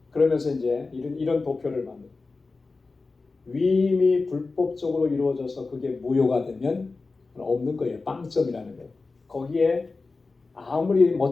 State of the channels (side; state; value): right; quieter; 3.9 dB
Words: 그러면서 이제 이런 도표를 만듭니다. 위임이 불법적으로 이루어져서 그게 무효가 되면 없는 거예요. 빵점이라는 거예요. 거기에 아무리